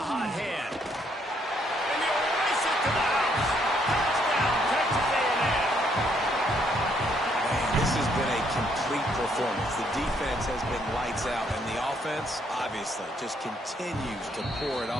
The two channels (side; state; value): both; normal; correlation 0.70